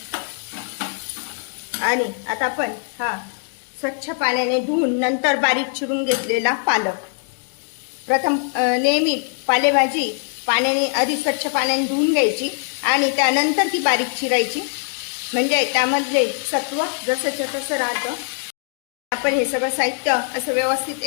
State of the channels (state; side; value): silent; right; 58 dB below the other